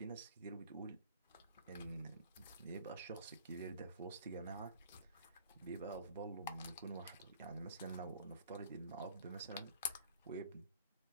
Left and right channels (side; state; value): both; inverted; correlation -0.52